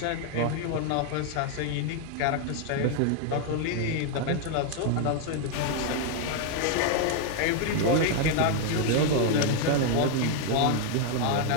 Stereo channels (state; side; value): different; both; correlation 0.00